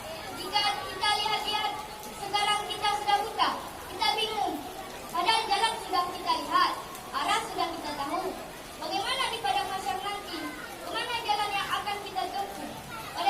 Jika kita lihat-lihat sekarang kita sudah buta, kita bingung. Padahal jalan sudah kita lihat, arah sudah kita tahu. Bagaimana di padang mahsyar nanti? Kemana jalan yang akan kita tempuh?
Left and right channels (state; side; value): identical; both; correlation 1.00